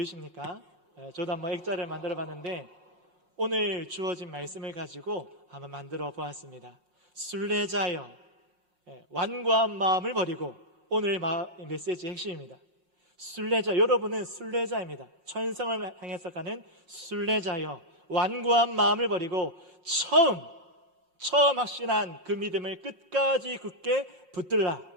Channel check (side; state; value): left; late; 5.5 ms